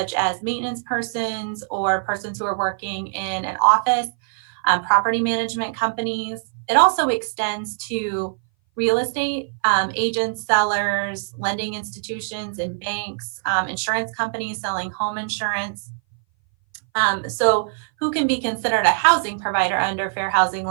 as maintenance persons or persons who are working in an office, property management companies. It also extends to real estate agents, sellers, lending institutions and banks, insurance companies selling home insurance. So who can be considered a housing provider under fair housing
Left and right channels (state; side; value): silent; left; 59 dB below the other